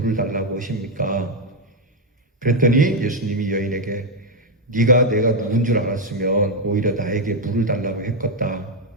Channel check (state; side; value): normal; both; correlation 0.03